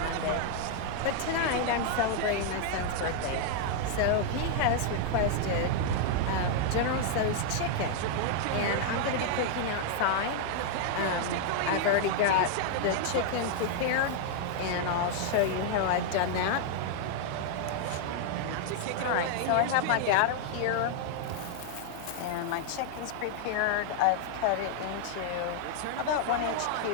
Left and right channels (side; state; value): both; different; correlation -0.01